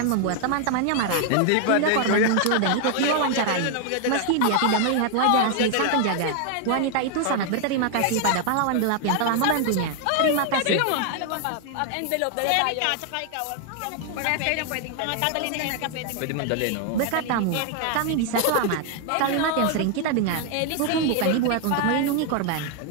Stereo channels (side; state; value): both; different; correlation 0.00